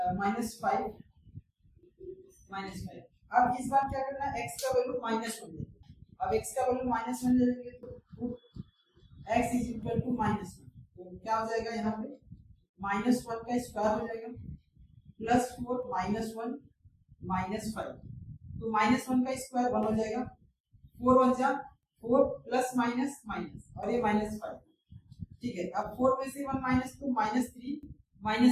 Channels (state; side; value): identical; both; correlation 1.00